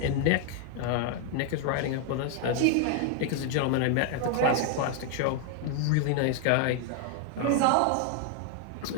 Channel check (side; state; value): both; different; correlation 0.00